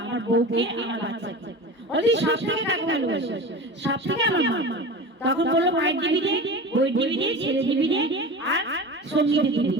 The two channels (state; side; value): normal; both; correlation 0.32